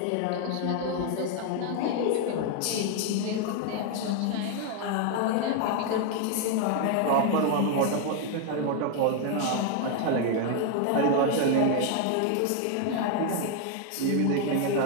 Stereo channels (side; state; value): both; different; correlation 0.01